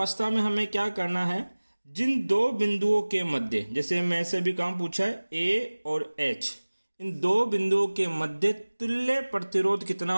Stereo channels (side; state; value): both; inverted; correlation -1.00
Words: में हमें क्या करना है, जिन 2 बिंदुओं के मध्य, जैसे मैं से भी काम पूछा है ए और एच, इन 2 बिंदुओं के मध्य तुल्य प्रतिरोध कितना